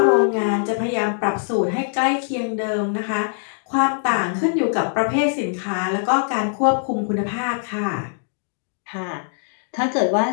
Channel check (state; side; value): silent; right; digital silence